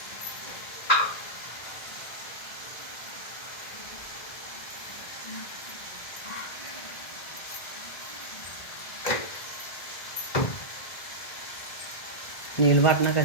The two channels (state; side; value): late; right; 1.7 ms